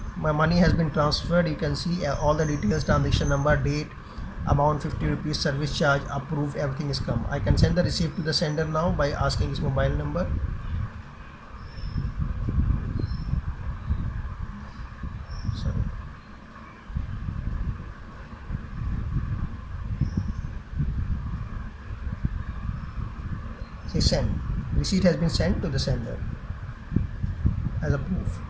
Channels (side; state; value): both; identical; correlation 1.00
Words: My money has been transferred. You can see all the details: transaction number, date, amount 50 rupees, service charge, approved, everything is come. I can send the receipt to the sender now by asking his mobile number. Say send. Receipt has been sent to the sender as a proof.